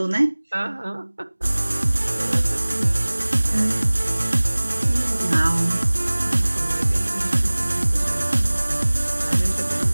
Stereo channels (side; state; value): both; inverted; correlation -1.00